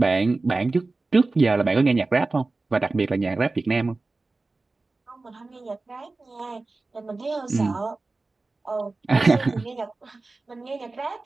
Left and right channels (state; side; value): quieter; left; 3.5 dB